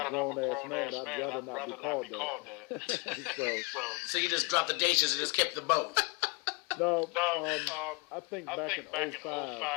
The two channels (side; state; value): right; quieter; 28.2 dB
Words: a grown-ass man, I'd rather not be called that. So you just dropped the dishes and just kept the boat. No, I think back in